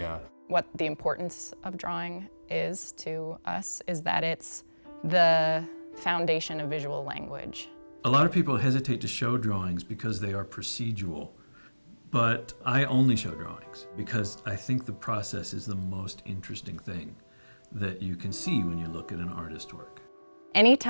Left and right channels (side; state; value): both; inverted; correlation -1.00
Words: What the importance of drawing is to us is that it's the foundation of visual language. A lot of people hesitate to show drawings because they are procedural, but I only show drawings because I think the process is the most interesting thing that you can see when you look at an artist's work.